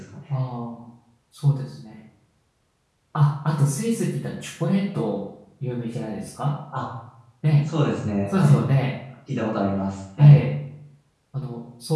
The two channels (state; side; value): identical; both; correlation 1.00